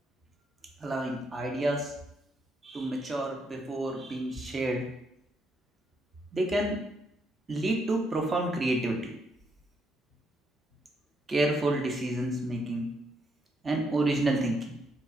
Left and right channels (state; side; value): normal; both; correlation 0.76